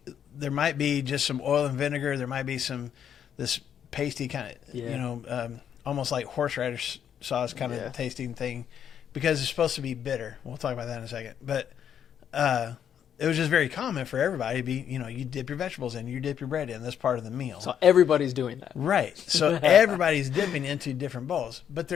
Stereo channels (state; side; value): quieter; right; 8.9 dB